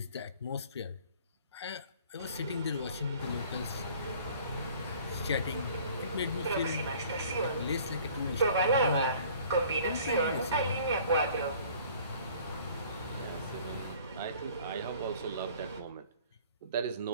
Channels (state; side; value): inverted; both; correlation -0.52